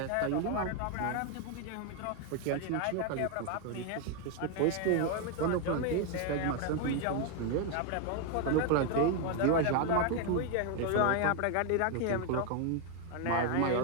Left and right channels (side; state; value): both; different; correlation 0.01